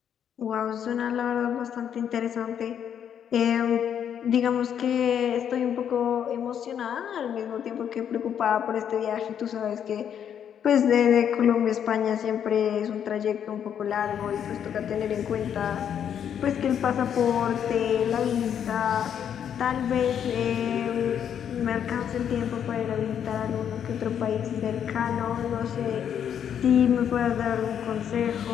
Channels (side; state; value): right; quieter; 8.8 dB